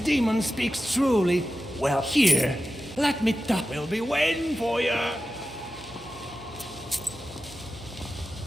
speaks truly. Well, here, let me talk. We'll be waiting for you.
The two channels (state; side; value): noise; right; hum, 21 dB below the sound